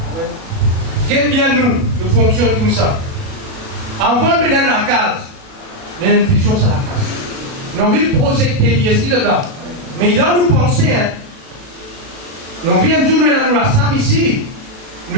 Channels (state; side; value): late; left; 36 ms